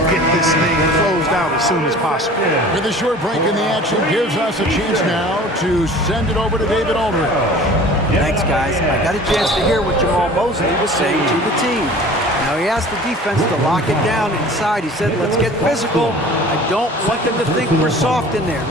get this thing closed out as soon as possible. With a short break in the action, gives us a chance now to send it over to David Aldridge. Thanks, guys. I got a chance to hear what Jamal Mosley was saying to the team. Now, he asked the defense to lock it down inside. He said, let's get physical. I don't want them to think we're soft in there.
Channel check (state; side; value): normal; both; correlation 0.44